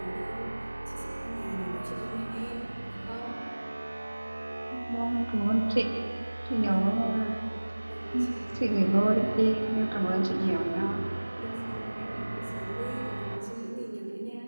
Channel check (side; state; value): both; inverted; correlation -1.00